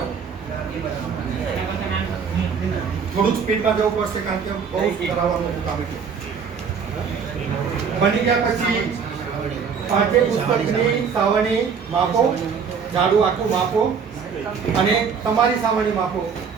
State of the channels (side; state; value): left; quieter; 6.3 dB